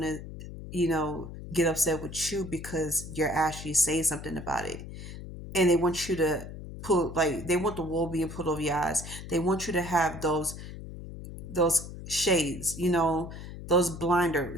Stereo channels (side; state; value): left; noise; hum, 11 dB below the sound